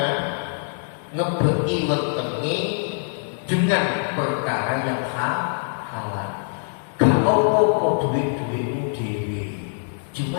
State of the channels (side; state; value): right; silent; digital silence